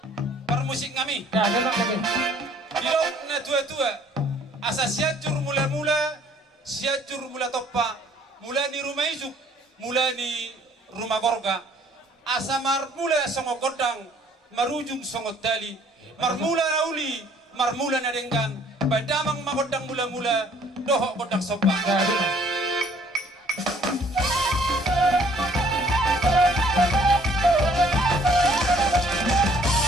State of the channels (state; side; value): normal; both; correlation 0.59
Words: permusik ngami dilok na tua-tua asa siajur mula-mula siajur mula toppa mula ni rumah ijuk mula ni rumah gorga asa marmula songo kodang marujung songo dali marmula nauli marmula na denggan badamang makodang mula-mula doho kodang sopa